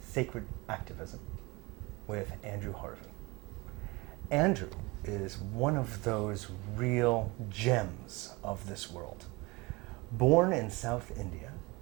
Sacred Activism with Andrew Harvey. Andrew is one of those real gems of this world. Born in South India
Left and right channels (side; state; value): left; quieter; 24.8 dB